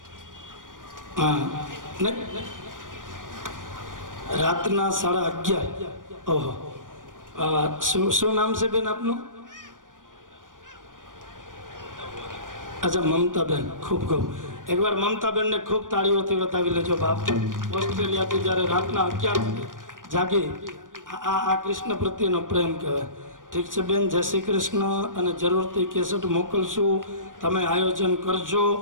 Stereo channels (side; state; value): left; late; 0.89 ms